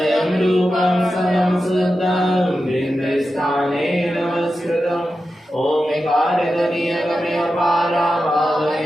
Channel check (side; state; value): both; normal; correlation 0.91